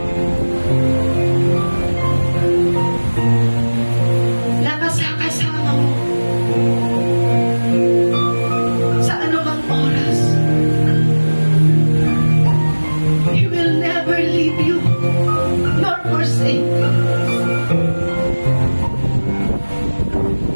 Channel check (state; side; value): inverted; both; correlation -1.00